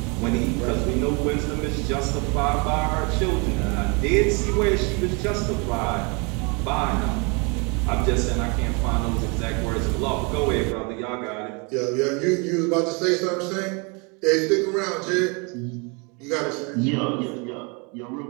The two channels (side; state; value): left; quieter; 31.9 dB